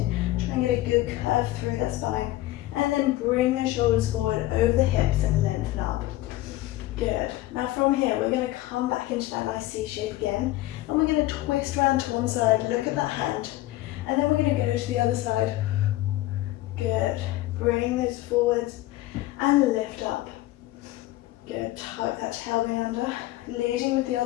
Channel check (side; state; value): right; quieter; 16.7 dB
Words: try and get a good curve through that spine, and then bring the shoulders forward over the hips and lengthen up. Good. Now from here, we're going to come back into that nice C shape again, and we're going to twist around to one side, look at that hand, and then we're going to go to the other side. Good. Bring those forwards and lift up. Good. Tuck that tailbone under, leading with the